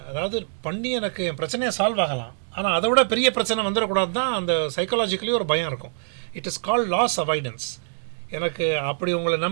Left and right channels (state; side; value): silent; left; digital silence